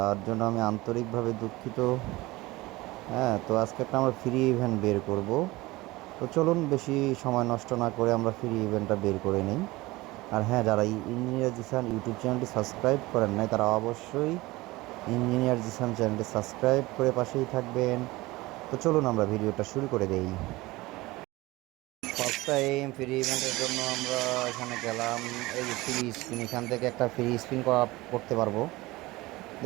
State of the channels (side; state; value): left; quieter; 20.4 dB